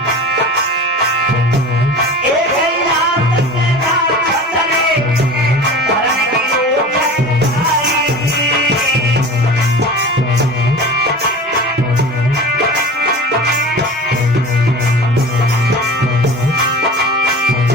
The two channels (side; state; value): both; normal; correlation 0.36